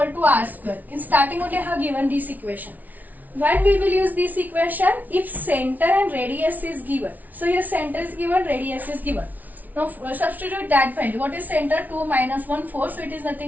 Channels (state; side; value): late; left; 0.077 ms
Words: to r square. In starting only I have given this equation. When we will use this equation? If center and radius is given. So here center is given, radius is given. Now substitute that value. What is center? 2 minus 1 4. So it is